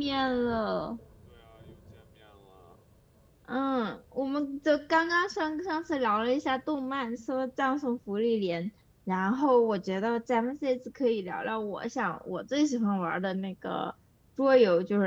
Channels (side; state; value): both; identical; correlation 1.00